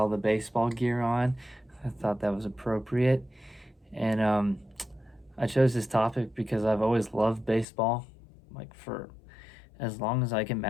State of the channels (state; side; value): drops out; right; at 7.7 s